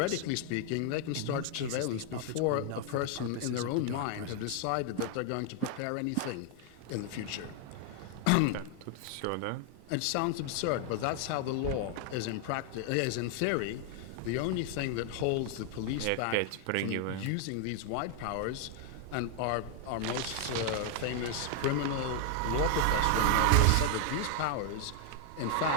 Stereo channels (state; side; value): different; both; correlation 0.00